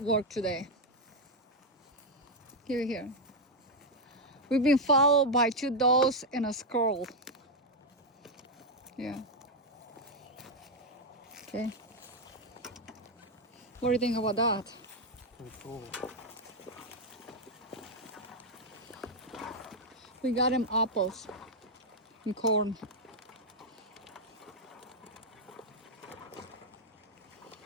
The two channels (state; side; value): normal; both; correlation 0.01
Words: today. Here. We've been followed by 2 dogs and a squirrel. Yeah. Okay. What do you think about that? Pretty cool. We got him apples and corn.